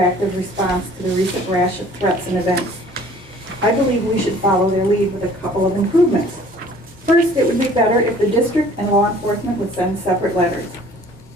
response to the recent rash of threats and events. I believe we should follow their lead with a couple of improvements. First, it would be better if the district and law enforcement would send separate letters.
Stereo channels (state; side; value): normal; both; correlation 0.52